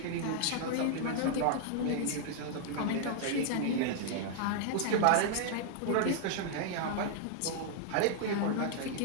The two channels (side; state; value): both; different; correlation -0.01